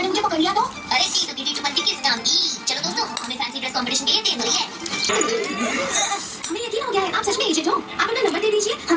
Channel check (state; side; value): identical; both; correlation 1.00